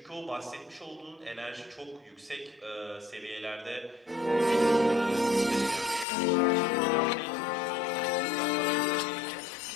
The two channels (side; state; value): right; drops out; at 6.1 s